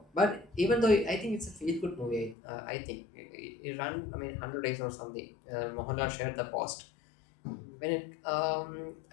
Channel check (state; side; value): drops out; right; at 2.4 s